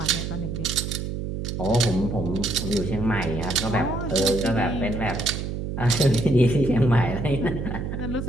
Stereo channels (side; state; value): right; noise; hum, 4 dB below the sound